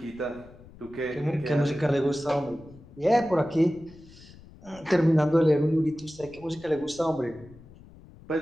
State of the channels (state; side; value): noise; left; rumble, 21 dB below the sound